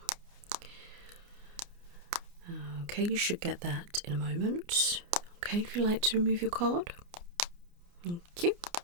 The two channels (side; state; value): left; late; 29 ms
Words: Okay, you should get that in a moment. Okay, if you'd like to remove your card. Thank you.